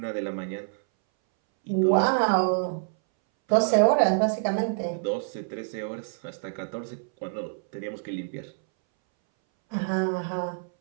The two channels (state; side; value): silent; left; 60 dB below the other